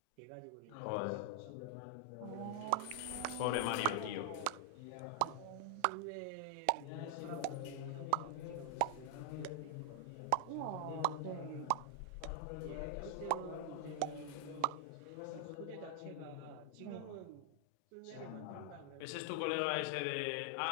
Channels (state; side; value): different; both; correlation 0.00